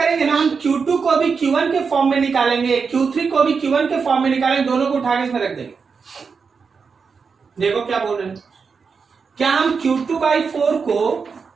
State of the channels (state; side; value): quieter; left; 5.4 dB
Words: ना, हम Q2 को भी Q1 के फॉर्म में निकालेंगे, Q3 को भी Q1 के फॉर्म में निकालेंगे, दोनों को उठा के इसमें रख देंगे। देखो क्या बोल रहे हैं, क्या हम Q2/4 को